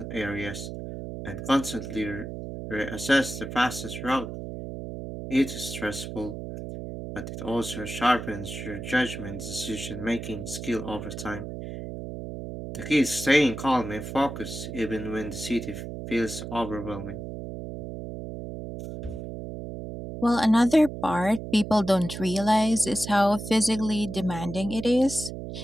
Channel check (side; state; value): right; noise; hum, 8 dB below the sound